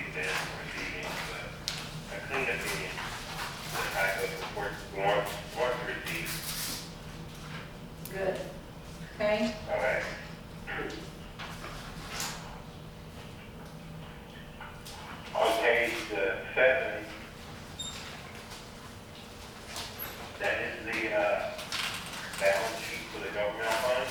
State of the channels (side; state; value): both; identical; correlation 1.00